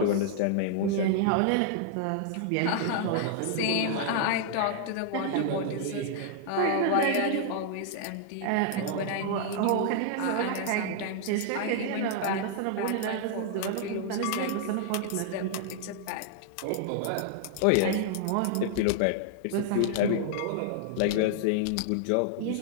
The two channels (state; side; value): different; both; correlation -0.01